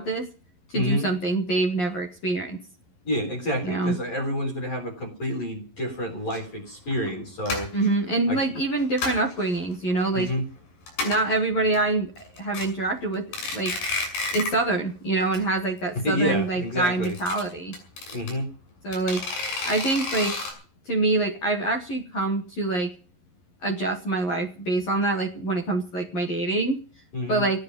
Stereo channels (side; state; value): right; late; 11 ms